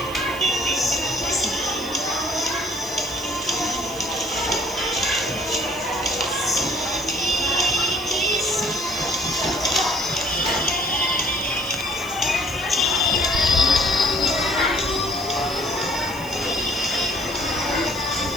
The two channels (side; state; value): right; noise; hiss, 16 dB below the sound